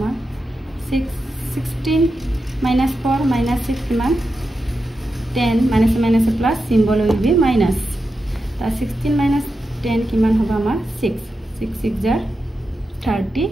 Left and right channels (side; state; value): both; normal; correlation 0.89